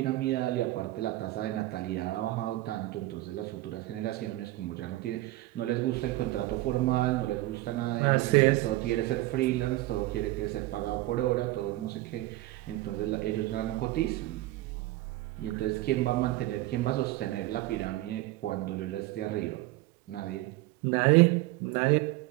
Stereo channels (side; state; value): left; quieter; 17.7 dB